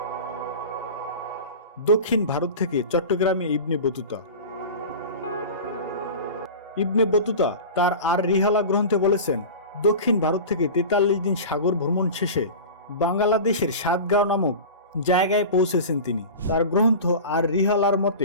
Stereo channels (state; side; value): inverted; both; correlation -0.32